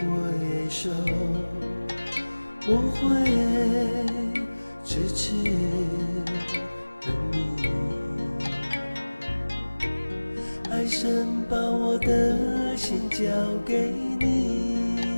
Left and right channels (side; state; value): both; inverted; correlation -1.00